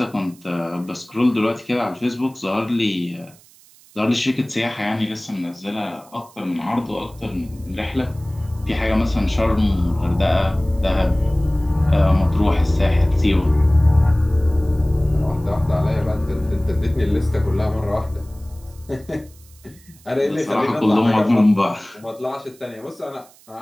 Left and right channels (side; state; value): right; noise; hiss, 26 dB below the sound